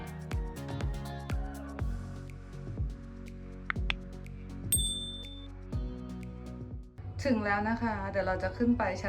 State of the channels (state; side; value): identical; both; correlation 1.00